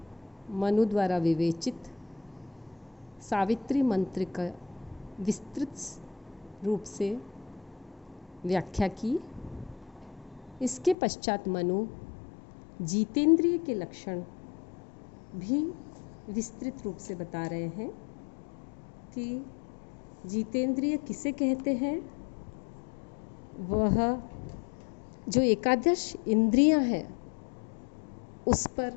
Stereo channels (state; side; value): drops out; right; at 11.0 s